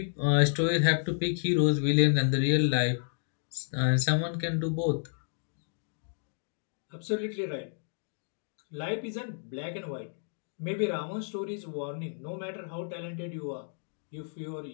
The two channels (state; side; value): silent; right; digital silence